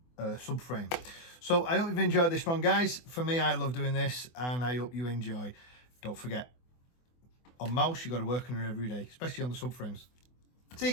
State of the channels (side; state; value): right; late; 24 ms